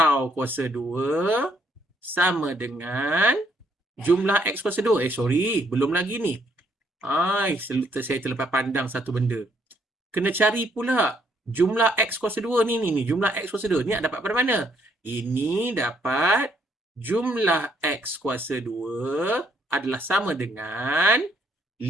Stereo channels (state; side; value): normal; both; correlation 0.70